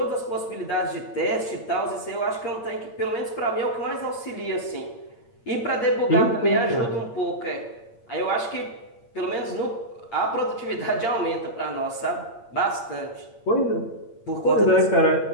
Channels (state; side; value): late; right; 8.7 ms